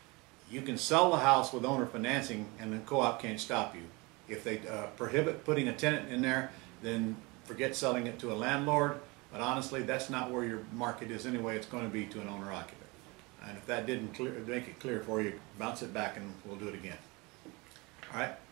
You can sell the house with owner financing, and the co-op can't stop you. If they prohibit putting a tenant in there, then forget selling it to a landlord. But honestly, that's not where your market is anyway. It's going to be to an owner occupant. And if that didn't make it clear for you, bounce it back and we'll do it again. All right?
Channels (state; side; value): quieter; left; 25.8 dB